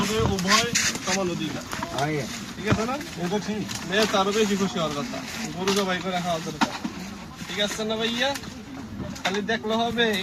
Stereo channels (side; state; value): both; identical; correlation 1.00